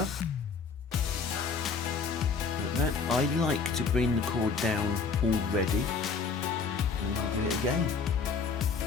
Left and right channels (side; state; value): right; quieter; 5.1 dB